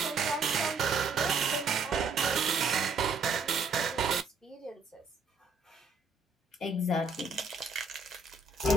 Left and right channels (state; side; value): quieter; left; 4.1 dB